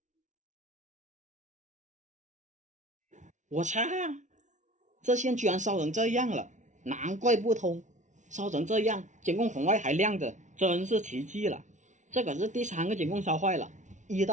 我操！这线居然烧成这样了，难怪不通。烧成这样，监控红外还亮着，真是奇迹了。这可是第3个监控烧坏了。1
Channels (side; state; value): left; late; 0.36 ms